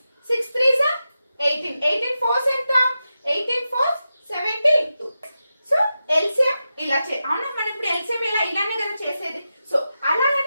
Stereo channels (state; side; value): inverted; both; correlation -0.91